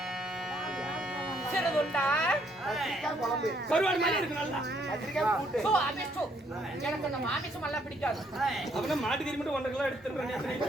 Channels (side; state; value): both; normal; correlation 0.69